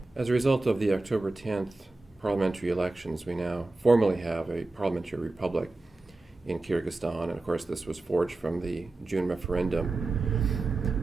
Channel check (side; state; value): left; quieter; 3.1 dB